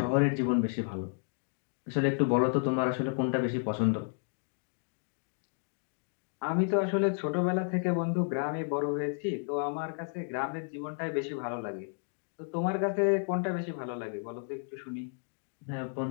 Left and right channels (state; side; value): silent; right; 56 dB below the other